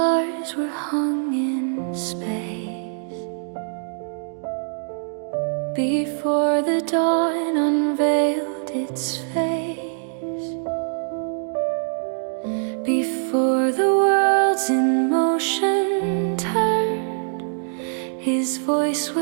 were hung in space, before the dawn unveiled its face, before the worlds in motion turned, his voice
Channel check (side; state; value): left; silent; digital silence